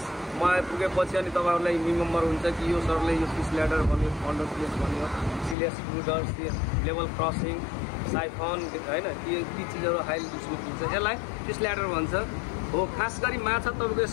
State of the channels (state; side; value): drops out; right; at 5.6 s